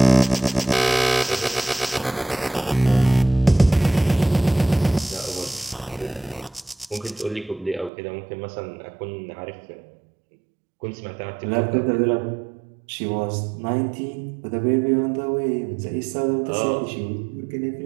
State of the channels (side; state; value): left; drops out; at 7.9 s